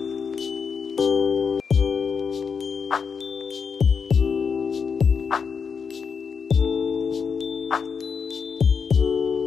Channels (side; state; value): right; quieter; 6.0 dB